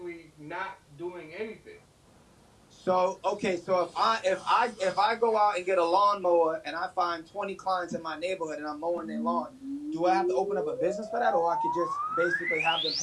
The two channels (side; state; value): both; identical; correlation 1.00